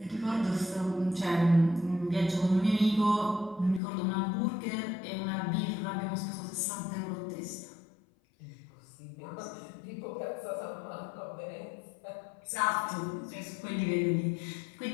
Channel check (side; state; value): right; drops out; at 3.8 s